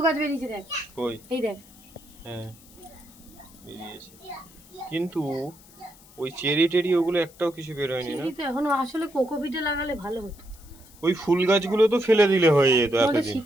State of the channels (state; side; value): noise; left; hiss, 24 dB below the sound